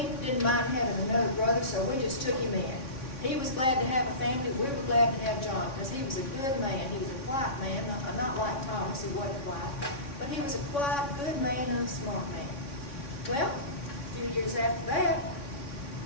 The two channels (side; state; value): right; late; 3.6 ms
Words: didn't mind having another brother, so we just took him in. He was glad to have a family. We were glad to have John, because he was a good man. He was a quiet man, not like Thomas, who wasn't quiet, but he was a quiet, good man and a smart man. Well, a few years after that,